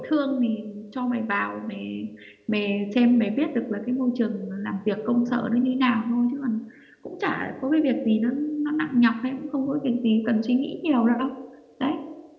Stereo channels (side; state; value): both; identical; correlation 1.00